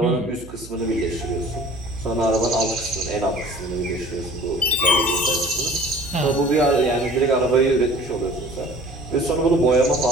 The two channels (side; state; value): right; noise; hum, 17 dB below the sound